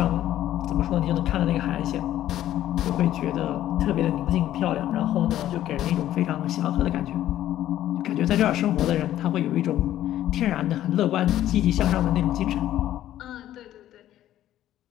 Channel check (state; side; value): quieter; right; 12.8 dB